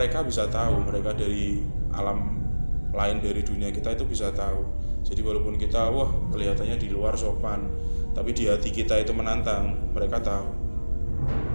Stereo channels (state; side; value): inverted; both; correlation -1.00